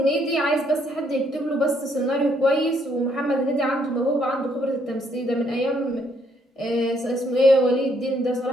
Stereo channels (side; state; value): both; normal; correlation 0.70